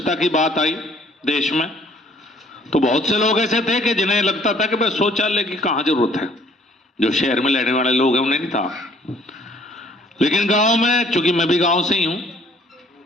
की बात आई देश में, तो बहुत से लोग ऐसे थे कि जिन्हें लगता था कि भाई शौचालय की कहां जरूरत है, जो शहर में रहने वाले लोग हैं उन्हें नहीं था। लेकिन गांव में, चूंकि मैं भी गांव से ही हूं,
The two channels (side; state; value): both; normal; correlation 0.59